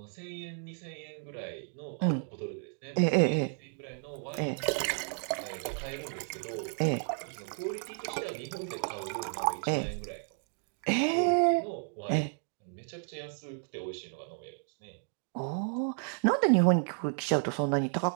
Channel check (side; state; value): left; silent; 56 dB below the other